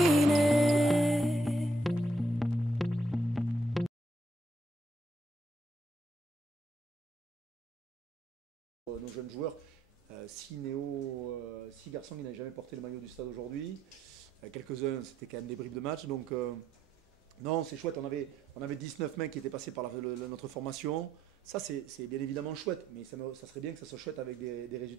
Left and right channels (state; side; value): normal; both; correlation 0.75